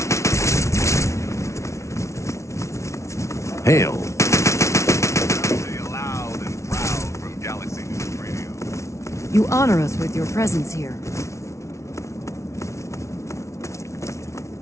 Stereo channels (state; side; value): late; right; 0.14 ms